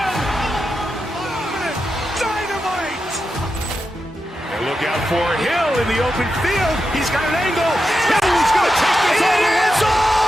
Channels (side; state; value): both; normal; correlation 0.88